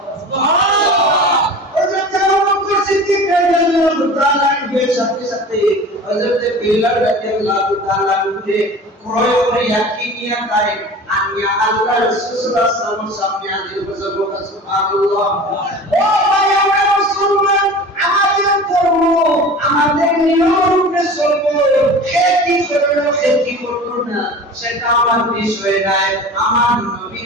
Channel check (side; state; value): both; normal; correlation 0.37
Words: সুবহানাল্লাহ। সাথে সাথে হযরত বিলাল রাদিয়াল্লাহু তাআলা কে ক্রয় করে ইয়াকি নিয়ে তাই আনিয়া আল্লাহ রাসূল সাল্লাল্লাহু আলাইহি ওয়াসাল্লাম সামনে হাজির করেছে। সুবহানাল্লাহ। ও ভাই, আমরা মুসলমান, আমাদের ধর্ম, আমাদের নিয়মে চলবো, খেতি করব না, সেটা আমার বিষয় নাই। আমার